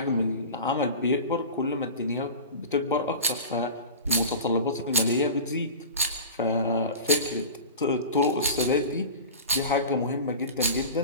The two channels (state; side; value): inverted; both; correlation -0.32